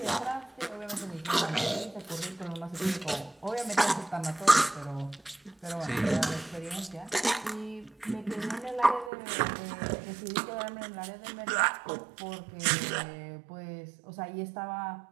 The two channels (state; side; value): drops out; left; at 9.1 s